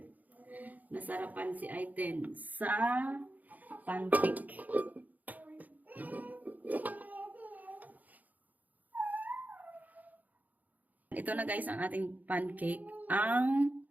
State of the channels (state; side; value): late; left; 0.080 ms